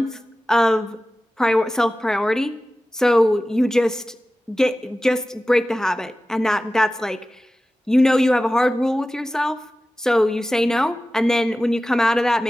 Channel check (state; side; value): normal; both; correlation 0.96